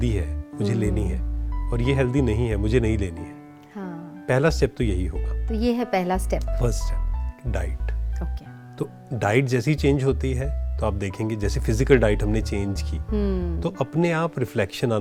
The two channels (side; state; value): both; identical; correlation 1.00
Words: है, मुझे लेनी है, और ये हेल्दी नहीं है, मुझे नहीं लेनी है। पहला स्टेप तो यही होगा। तो ये है पहला step, first step, diet. Okay. तो डाइट जैसी चेंज होती है तो आप देखेंगे, जैसे फिजिकल डाइट हमने चेंज की तो अपने आप रिफ्लेक्शन